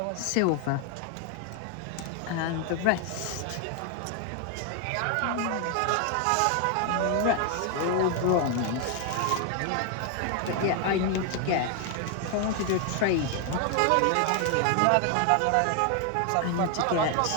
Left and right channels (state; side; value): different; both; correlation 0.00